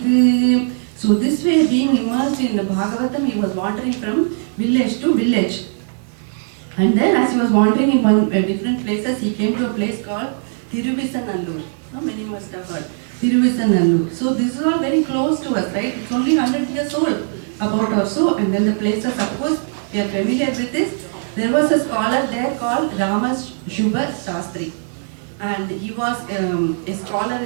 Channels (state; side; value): silent; left; digital silence